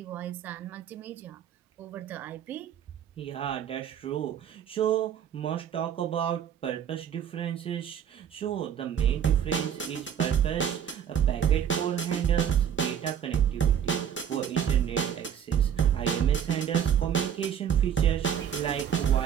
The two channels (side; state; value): left; quieter; 8.8 dB